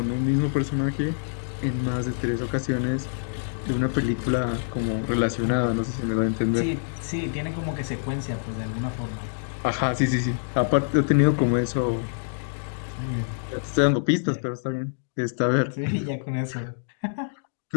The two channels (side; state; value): right; silent; digital silence